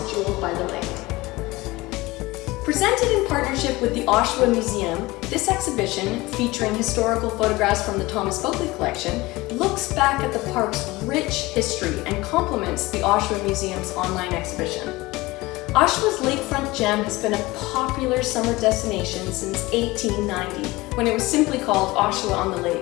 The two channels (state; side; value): quieter; right; 20.7 dB